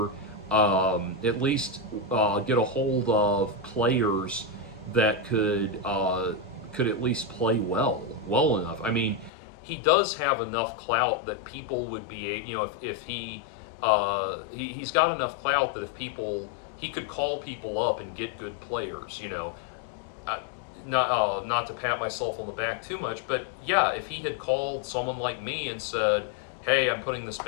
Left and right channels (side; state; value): right; drops out; at 9.3 s